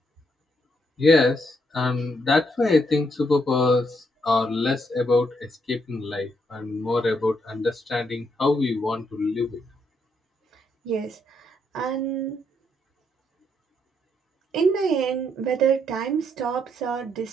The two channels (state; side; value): normal; both; correlation 0.76